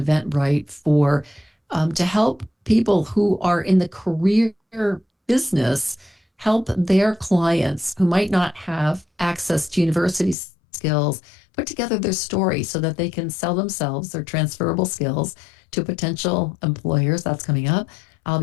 Eventbrite for to help people who are in the career business help their clients who might not have access to university skills put together their story so that they can sell themselves, their transferable skills, to potential employers. That's coming up. I'll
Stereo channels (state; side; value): drops out; right; at 10.4 s